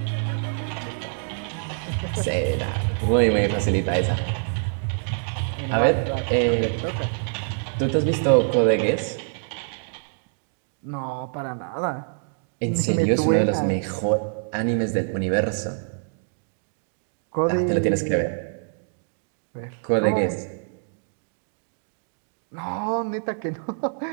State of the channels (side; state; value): left; silent; digital silence